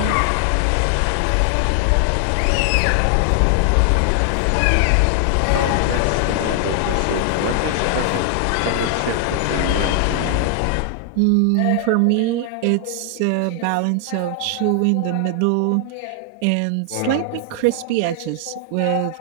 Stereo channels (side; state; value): both; different; correlation 0.00